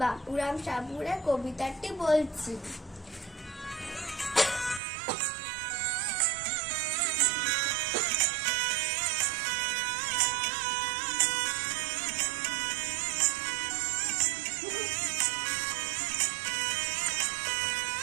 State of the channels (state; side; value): drops out; left; at 4.8 s